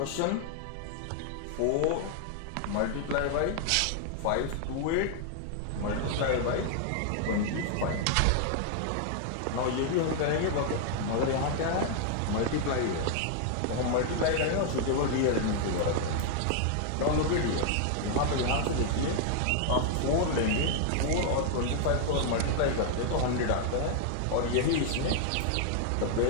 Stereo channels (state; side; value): different; both; correlation 0.00